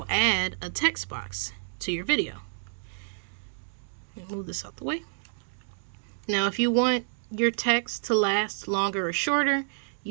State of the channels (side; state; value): left; silent; digital silence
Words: add a text box to your video. Move this out the way. Now, if you want your text to last longer or shorter,